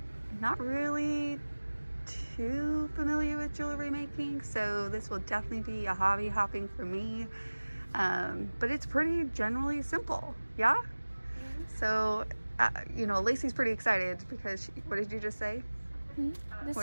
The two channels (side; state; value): both; inverted; correlation -1.00